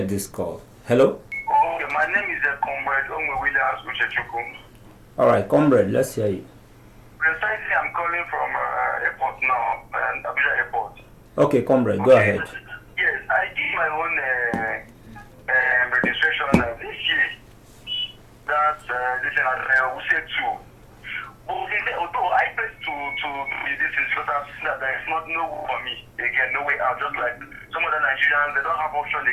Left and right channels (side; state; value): both; identical; correlation 1.00